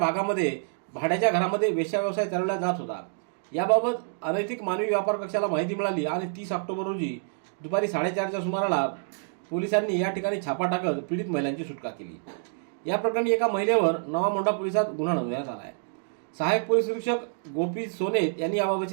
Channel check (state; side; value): silent; left; digital silence